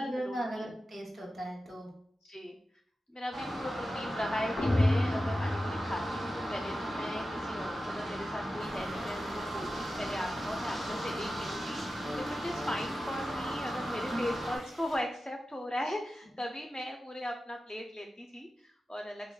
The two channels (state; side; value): normal; both; correlation 0.93